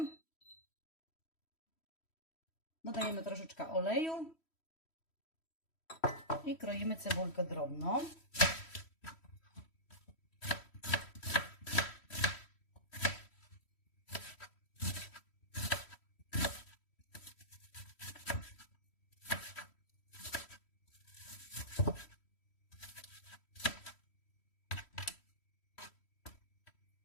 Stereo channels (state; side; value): late; right; 3.1 ms